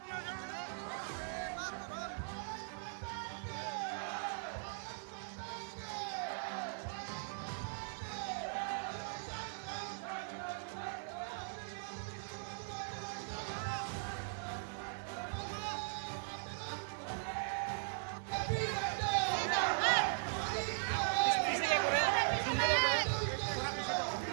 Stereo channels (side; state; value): left; silent; 51 dB below the other